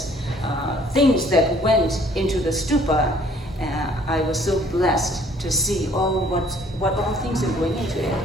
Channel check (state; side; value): normal; both; correlation 0.59